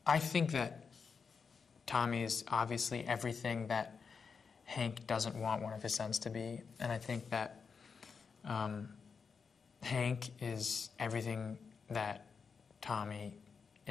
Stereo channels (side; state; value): right; quieter; 5.6 dB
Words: I think that Tommy is obviously everything that Hank doesn't want one of his sons to be, and I think that Hank is everything that Tommy